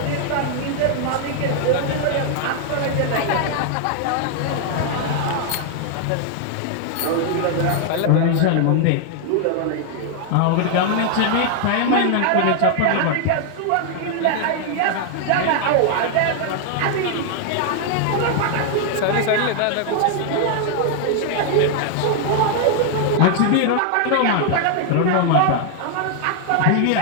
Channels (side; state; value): both; different; correlation 0.00